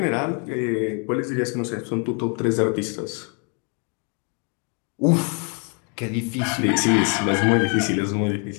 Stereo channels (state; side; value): quieter; right; 38.5 dB